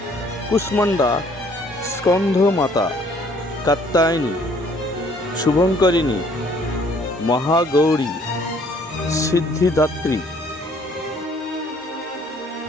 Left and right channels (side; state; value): both; normal; correlation 0.60